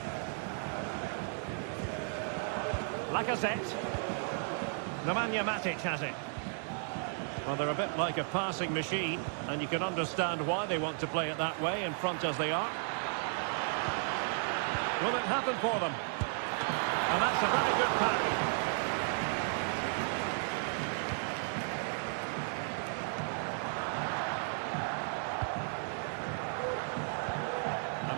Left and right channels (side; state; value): left; silent; 55 dB below the other